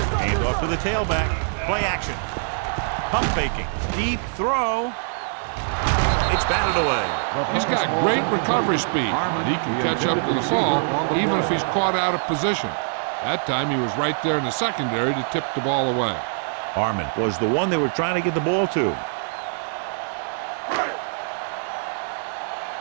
Hand off to the tailback. Play action. Pump faking. Deep throw. It's batted away. He's got great recovery speed, and he can catch up to the ball even if he's caught out of position. That time he was right there in the secondary to tip the ball away. Harmon was the one they were trying to get the ball to.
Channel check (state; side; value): silent; left; 63 dB below the other